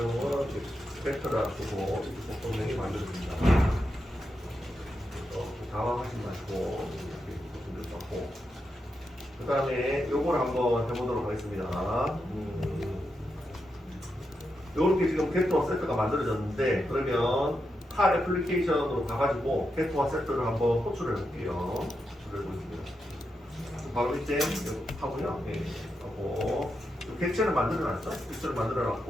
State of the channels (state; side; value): normal; both; correlation 0.86